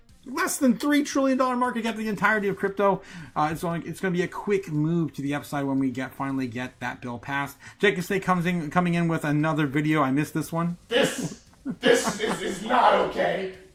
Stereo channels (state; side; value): identical; both; correlation 1.00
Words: less than $3 trillion market cap, the entirety of crypto. It's going to be a quick move to the upside when we finally get that bill passed. Jacob Stay coming in with another video. I missed this one. This is not okay.